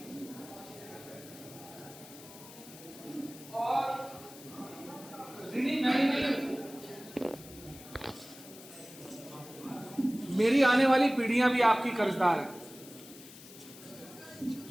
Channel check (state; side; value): noise; left; hiss, 18 dB below the sound